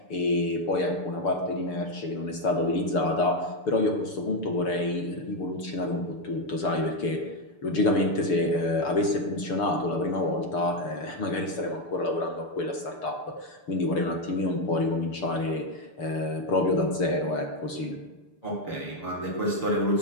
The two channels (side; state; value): right; late; 6.8 ms